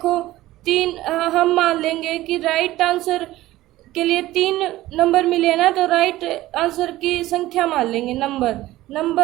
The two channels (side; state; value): left; quieter; 16.3 dB